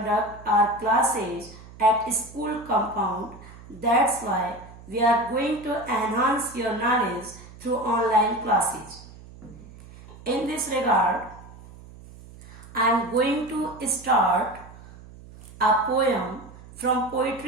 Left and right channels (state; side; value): noise; right; hum, 19 dB below the sound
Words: our classes at school compound. That's why we are going to enhance your knowledge through online classes. In this regard, I am going to start a poem from